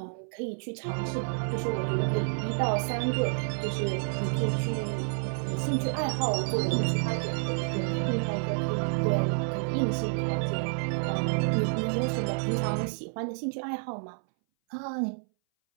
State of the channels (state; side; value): silent; left; 58 dB below the other